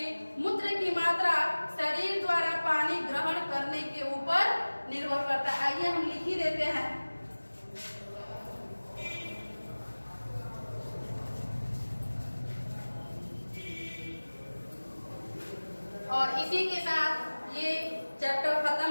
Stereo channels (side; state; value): both; inverted; correlation -1.00